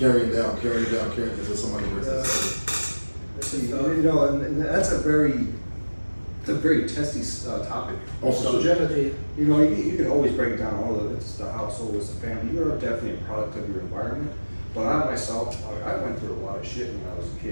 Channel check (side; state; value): both; inverted; correlation -1.00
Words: down until somebody breaks that. You know, and that's a very testy topic. Subject. You know, you can always break down all of it. It's the household, it's the family. You're definitely a product of your environment. But I myself, I went through a lot of shit when I was a